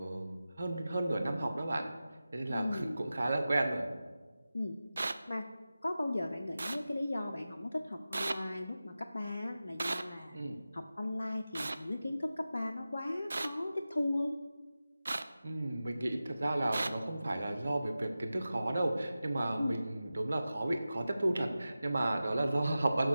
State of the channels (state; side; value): inverted; both; correlation -0.94